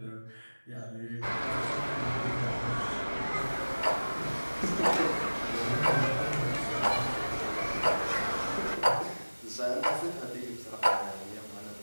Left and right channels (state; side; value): inverted; both; correlation -1.00